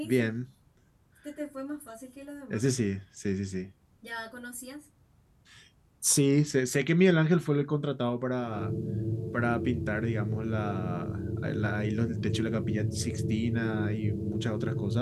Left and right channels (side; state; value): both; identical; correlation 1.00